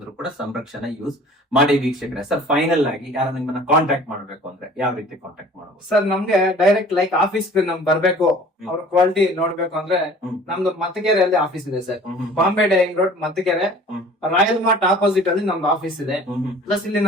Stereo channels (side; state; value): both; normal; correlation 0.48